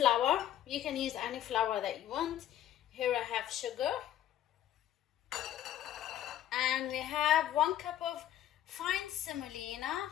You can use any flour that you want. Here I have sugar, and we have 1 cup of fine semolina,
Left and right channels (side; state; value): right; quieter; 11.9 dB